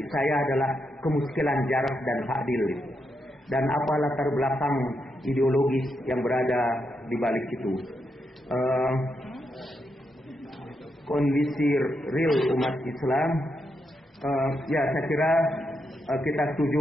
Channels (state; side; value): normal; both; correlation 0.83